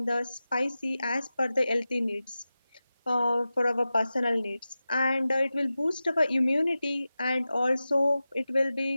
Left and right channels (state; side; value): inverted; both; correlation -0.95